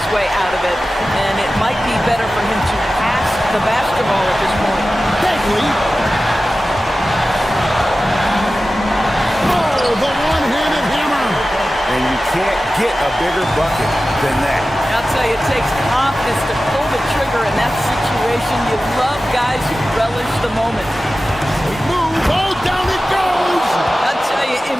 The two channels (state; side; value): normal; both; correlation 0.95